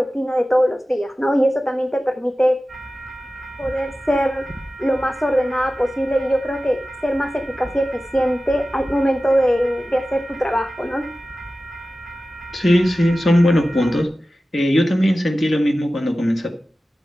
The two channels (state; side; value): normal; both; correlation 0.95